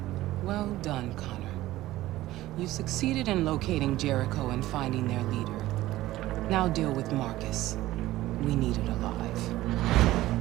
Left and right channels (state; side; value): quieter; left; 16.1 dB